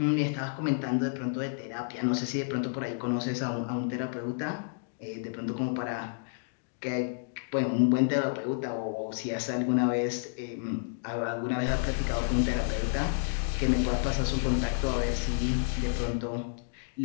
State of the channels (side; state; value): right; silent; digital silence